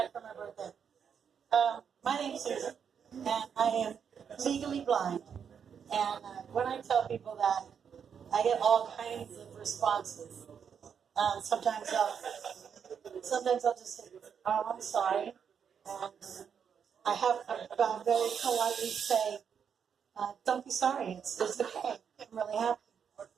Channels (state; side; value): quieter; left; 7.3 dB